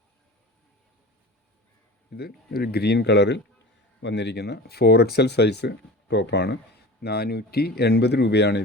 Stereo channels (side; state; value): both; normal; correlation 0.36